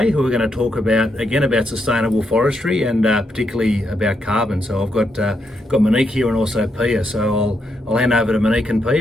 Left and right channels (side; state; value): both; normal; correlation 0.80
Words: who are going to talk about sustainable forestry and particularly about carbon. So I've got Monique here and also Pia. So I'll hand over to Monique and